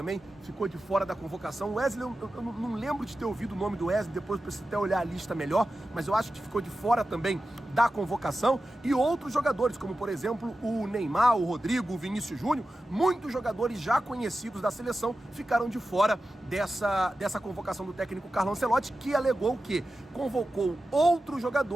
ficou de fora da convocação. O Wesley, eu não lembro de ter ouvido o nome do Wesley, depois preciso até olhar a lista melhor, mas eu acho que ficou de fora também da convocação. E outros jogadores, como por exemplo o Neymar, o Rodrigo, o Vinícius Júnior, muitos jogadores já conhecidos da seleção ficaram de fora dessa convocação do técnico Carlo Ancelotti, que alegou que convocou outros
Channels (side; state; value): both; normal; correlation 0.93